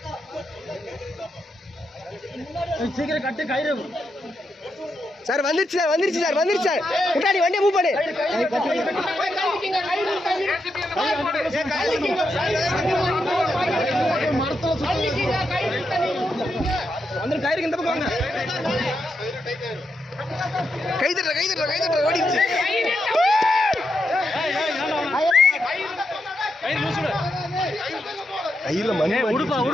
சீக்கிரம் கட்டு கயிறு. சார் வந்துருச்சு சார், வந்துருச்சு சார், வந்துருச்சு சார். முன்னாடி வண்டியை மூவ் பண்ணு. வந்து கயிறுக்கு இந்த பக்கம் வாங்க. கை தட்டுற கை தட்டுற கை தட்டுற ஓடிடுச்சு. கையில மணி உடுப்பா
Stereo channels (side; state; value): both; normal; correlation 0.84